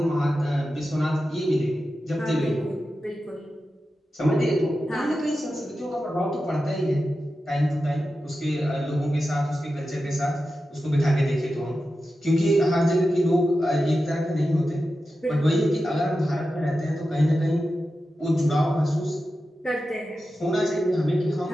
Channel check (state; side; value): normal; both; correlation 0.92